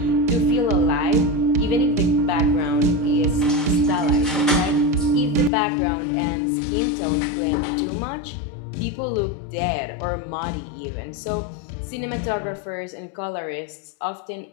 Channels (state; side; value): drops out; right; at 5.5 s